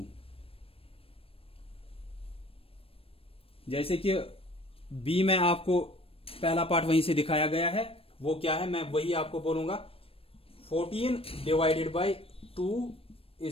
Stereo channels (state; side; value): late; right; 0.28 ms